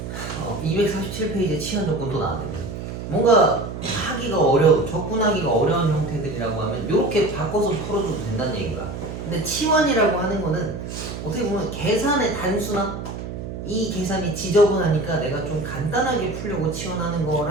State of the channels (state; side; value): noise; right; hum, 8 dB below the sound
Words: 247페이지에 치환 조건 또 나왔는데 뭔가 하기가 어려운, 접근하기가 어려운 형태들이라고 하면 이렇게 바꿔서 풀어줘도 된다는 얘기가. 근데 치환이라고 하는 거는 어떻게 보면 계산의 단수나 이 계산이 지저분하니까 내가 좀 간단하게 풀려고 치환하는